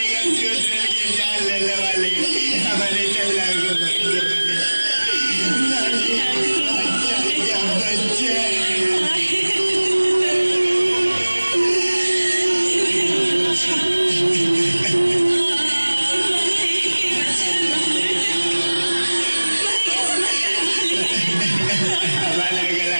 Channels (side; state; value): both; inverted; correlation -1.00